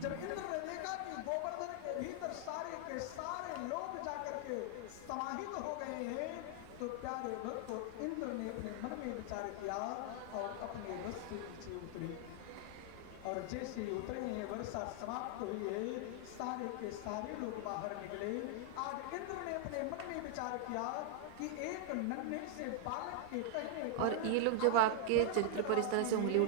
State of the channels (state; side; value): different; both; correlation 0.00